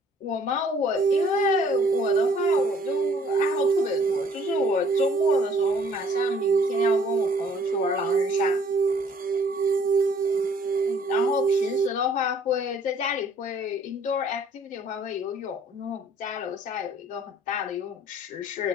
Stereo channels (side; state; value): both; normal; correlation 0.59